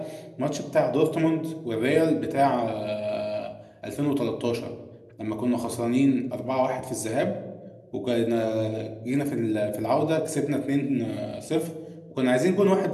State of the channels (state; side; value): identical; both; correlation 1.00